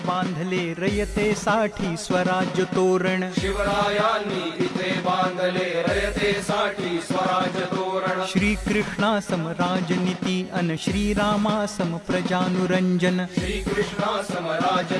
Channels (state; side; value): identical; both; correlation 1.00